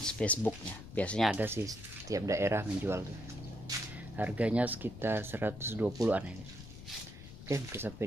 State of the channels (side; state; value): left; noise; rumble, 14 dB below the sound